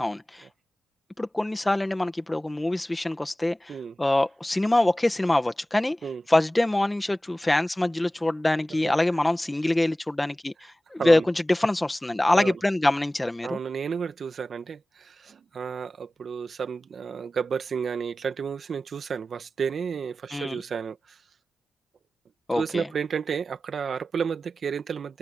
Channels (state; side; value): normal; both; correlation 0.96